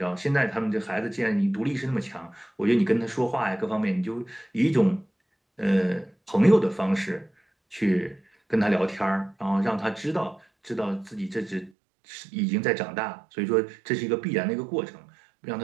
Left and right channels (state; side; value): drops out; left; at 11.7 s